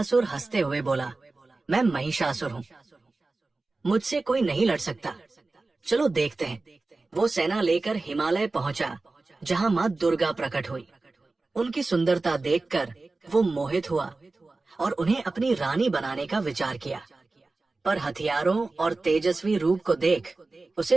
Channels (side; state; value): left; quieter; 3.4 dB